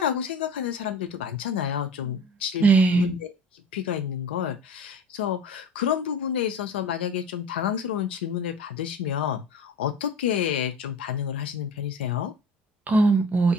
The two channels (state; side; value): normal; both; correlation 0.38